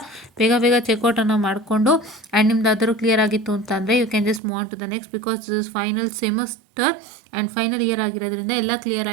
ಬೇಗ ಬೇಗ ಚೆಕ್ಔಟನ್ನು ಮಾಡಿಕೊಂಡು and ನಿಮ್ದು ಅದರೂ clear ಆಗಿತ್ತು ಅಂತಂದರೆ you can just move on to the next, because this is final semester and final year ಆಗಿರೋದ್ರಿಂದ ಎಲ್ಲ ಕ್ಲಿಯರ್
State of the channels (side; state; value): left; drops out; at 4.4 s